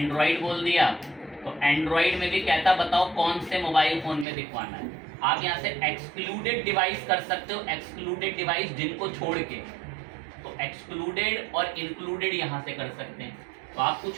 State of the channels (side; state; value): left; drops out; at 4.2 s